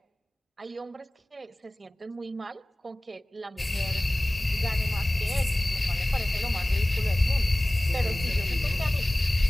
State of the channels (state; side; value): normal; both; correlation 0.98